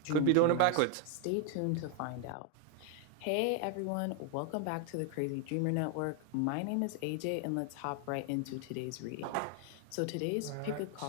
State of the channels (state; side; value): different; both; correlation 0.00